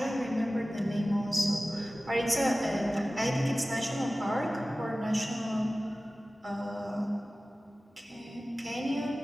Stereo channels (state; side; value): normal; both; correlation 0.97